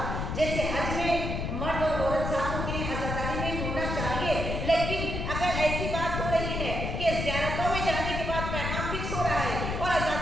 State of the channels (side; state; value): left; noise; rumble, 2 dB below the sound